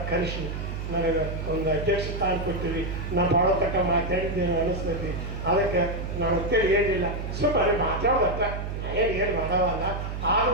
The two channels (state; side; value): noise; right; hum, 5 dB below the sound